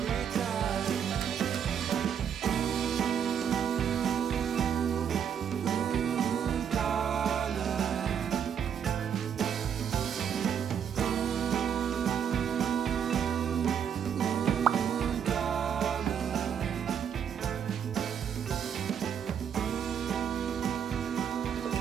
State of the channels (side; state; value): left; quieter; 8.1 dB